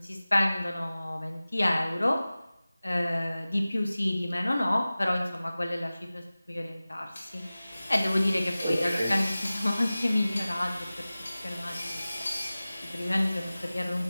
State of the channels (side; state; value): both; inverted; correlation -0.97